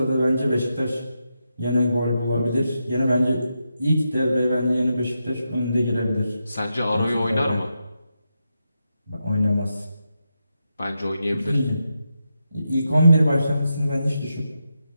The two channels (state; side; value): inverted; both; correlation -0.86